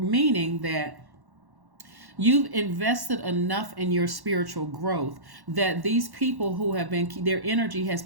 that you've invested enough in your spiritual growth that these people who have been, their energy has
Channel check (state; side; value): late; left; 1.1 ms